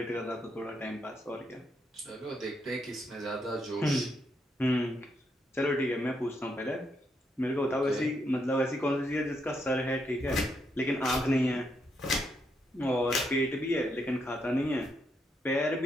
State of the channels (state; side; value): normal; both; correlation 0.78